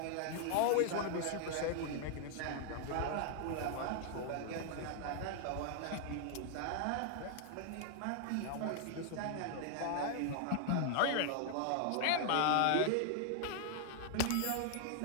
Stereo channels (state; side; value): different; both; correlation 0.00